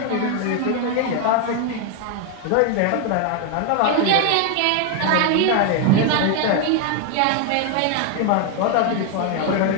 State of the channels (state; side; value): different; both; correlation 0.01